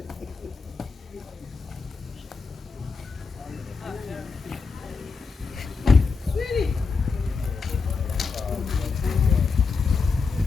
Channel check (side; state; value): right; quieter; 4.8 dB